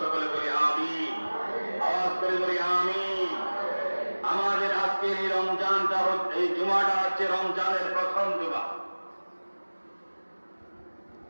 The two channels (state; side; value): inverted; both; correlation -1.00